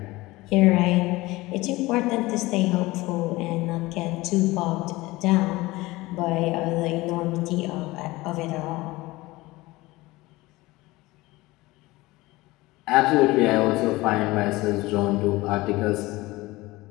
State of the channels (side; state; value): right; quieter; 20.2 dB